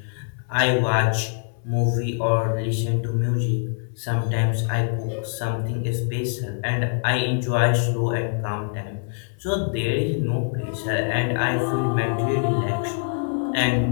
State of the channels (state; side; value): silent; right; 63 dB below the other